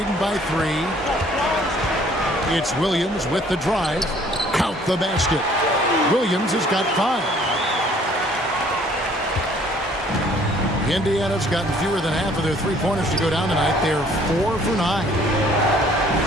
by 3. It's Williams with the drive. Count the basket. Williams has got 5. Indiana's gotten fewer than half of their 3-pointers to go down tonight. They're 4 for 9.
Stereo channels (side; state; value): both; normal; correlation 0.58